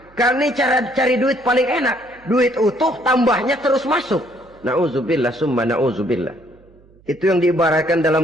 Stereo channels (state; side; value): noise; right; hum, 28 dB below the sound